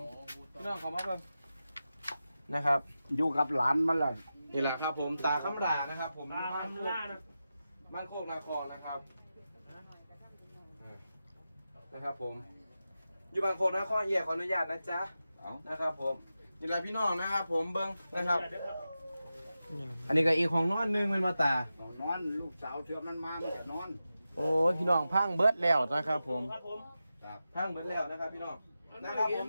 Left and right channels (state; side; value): inverted; both; correlation -0.92